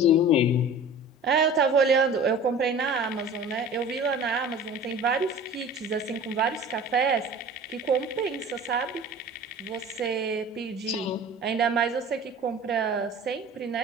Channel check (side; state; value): both; normal; correlation 0.41